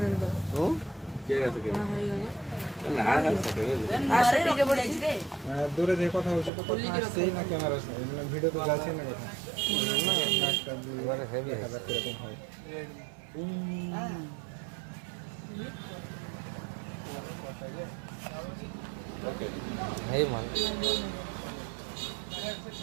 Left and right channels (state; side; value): drops out; left; at 6.5 s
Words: দূরে যে কথা হচ্ছে তো কথা আসছেই না, ক্যামেরা ভিডিও তো যাচ্ছে না কথা। এবারে হেভি কিরকম হয় এই মাল